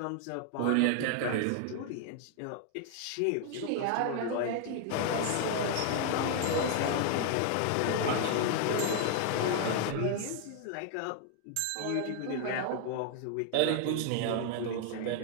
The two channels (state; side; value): different; both; correlation 0.00